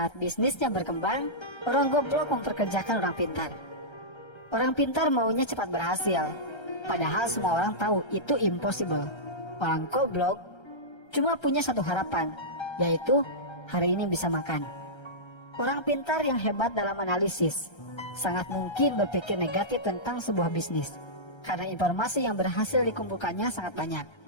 bisnisnya berkembang, orang goblok memperkerjakan orang pintar. Orang pintar maunya cepat berhasil, padahal semua orang tahu itu impossible. Orang goblok cuma punya satu harapan, yaitu hari ini bisa makan. Orang pintar yang hebat dalam analisis sangat mungkin berpikir negatif tentang sebuah bisnis, karena informasi yang berhasil dikumpulkannya sangat banyak.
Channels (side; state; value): right; late; 1.3 ms